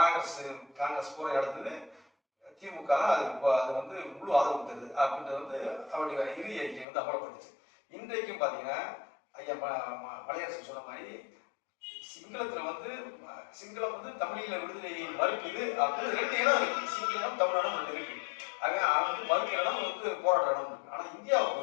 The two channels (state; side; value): drops out; right; at 6.9 s